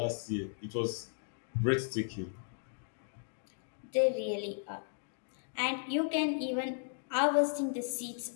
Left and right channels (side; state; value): right; silent; digital silence